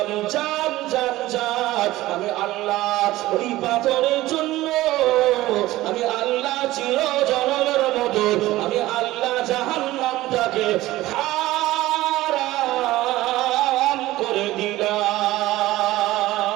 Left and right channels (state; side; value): quieter; left; 16.9 dB